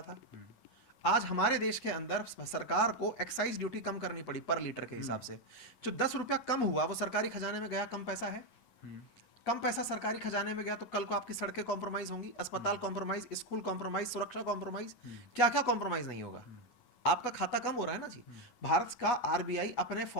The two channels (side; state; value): right; late; 9.7 ms